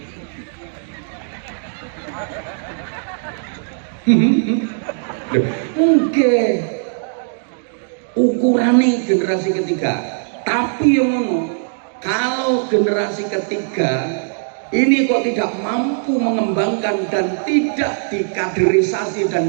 Mungkin ukurannya generasi ketiga. Tapi yang ngono, kalau generasi ketiga ini kok tidak mampu mengembangkan dan tidak dikaderisasi dan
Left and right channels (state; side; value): silent; left; 66 dB below the other